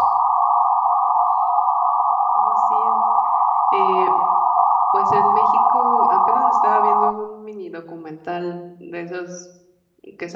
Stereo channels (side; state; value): both; identical; correlation 1.00